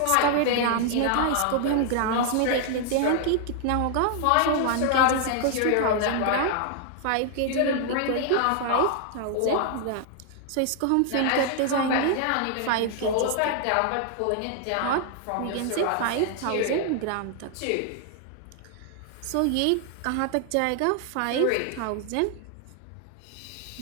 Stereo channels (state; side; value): different; both; correlation 0.00